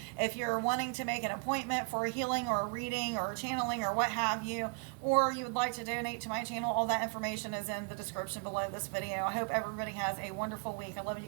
If you're wanting to make an appointment for a healing or a reading or a channeling or what have you, or you would like to donate to my channel, all that information is in the description below this video. I hope everybody has a wonderful week. I love you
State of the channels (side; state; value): left; quieter; 39.3 dB